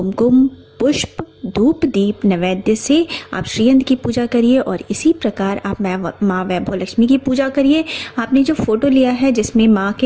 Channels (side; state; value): both; identical; correlation 1.00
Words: पुष्प, धूप, दीप, नैवेद्य से आप श्रीयंत्र की पूजा करिए और इसी प्रकार आप माँ वैभव लक्ष्मी की पूजा करिए। आपने जो फोटो लिया है जिसमें माँ